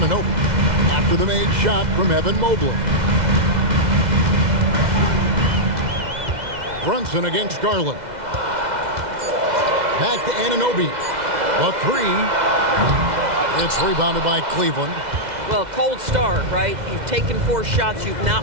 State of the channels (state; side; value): late; left; 2.0 ms